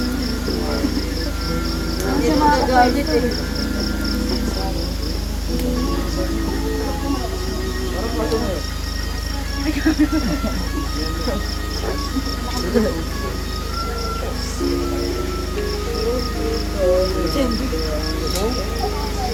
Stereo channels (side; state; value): both; identical; correlation 1.00